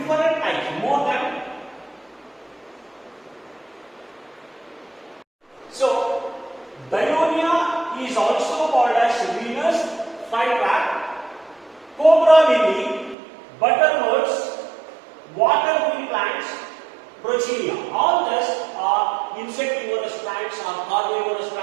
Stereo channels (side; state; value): left; drops out; at 13.2 s